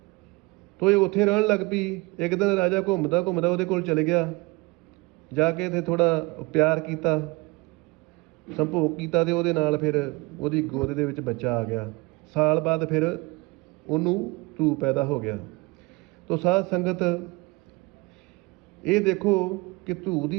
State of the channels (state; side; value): quieter; left; 25.2 dB